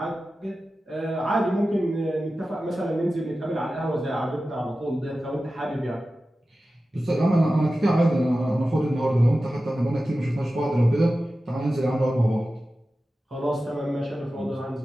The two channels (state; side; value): normal; both; correlation 0.94